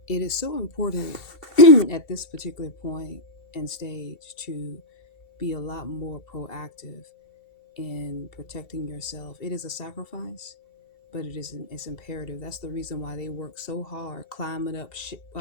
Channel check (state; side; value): late; right; 2.7 ms